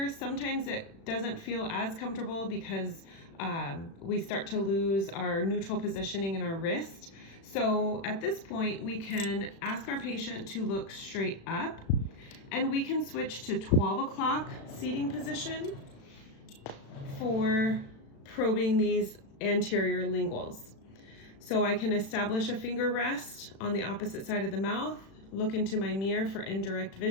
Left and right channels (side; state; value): right; late; 36 ms